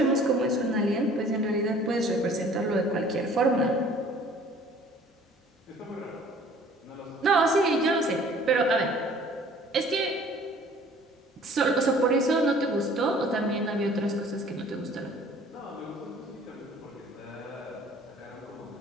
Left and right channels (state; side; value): normal; both; correlation 0.52